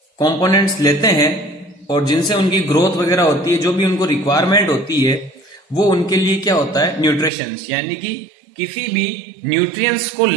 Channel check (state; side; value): drops out; left; at 7.3 s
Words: कंपोनेंट्स लेते हैं और जिनसे उनकी ग्रोथ वगैरह होती है, जो भी उनको रिक्वायरमेंट होती है, वो उनके लिए क्या होता है, न्यूट्रिशंस, यानी कि किसी भी न्यूट्रिएंट्स को